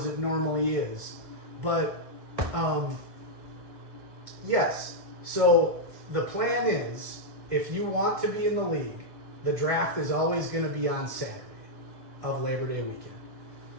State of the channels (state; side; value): late; left; 1.6 ms